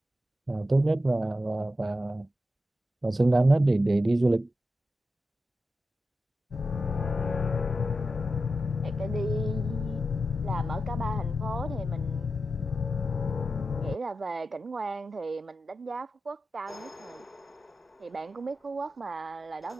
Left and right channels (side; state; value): both; normal; correlation 0.90